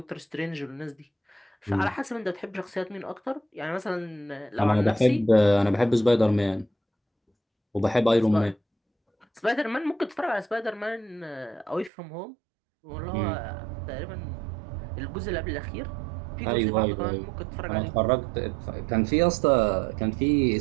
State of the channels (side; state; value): left; drops out; at 11.9 s